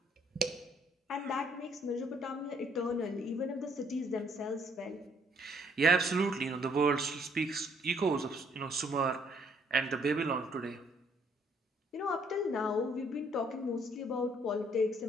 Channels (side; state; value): both; normal; correlation 0.65